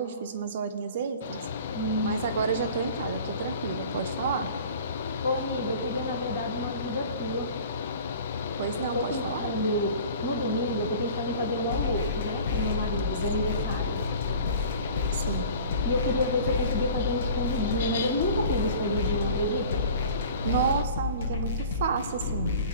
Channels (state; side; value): inverted; both; correlation -0.44